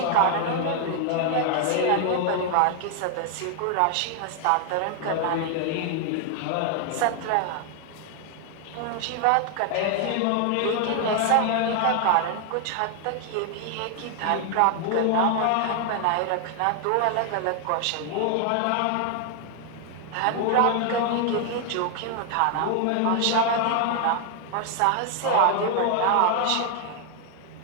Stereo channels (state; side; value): different; both; correlation 0.00